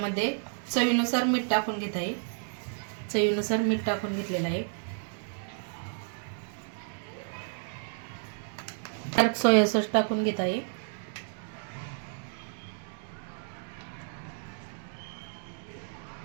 चवीनुसार मीठ टाकून घेत आहे. चवीनुसार मीठ टाकून घेतलेलं आहे. डार्क सोया सॉस टाकून घेत आहे.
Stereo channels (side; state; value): left; silent; 57 dB below the other